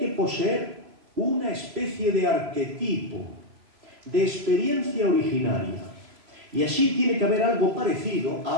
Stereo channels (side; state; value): left; late; 3.0 ms